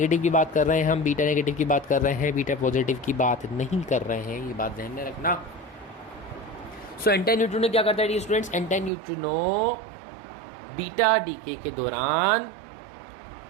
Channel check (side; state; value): left; drops out; at 8.9 s